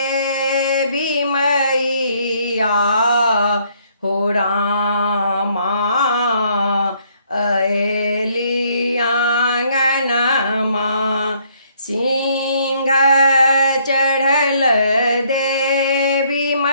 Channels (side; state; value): both; inverted; correlation -0.67